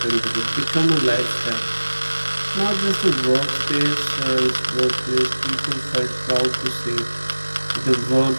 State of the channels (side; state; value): both; inverted; correlation -1.00